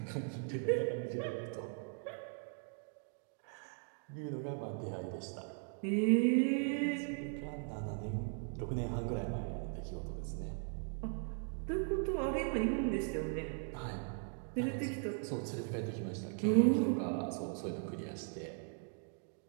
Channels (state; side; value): silent; left; 52 dB below the other